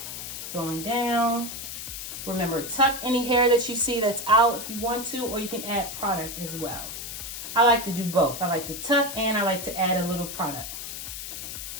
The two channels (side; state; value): left; noise; hiss, 8 dB below the sound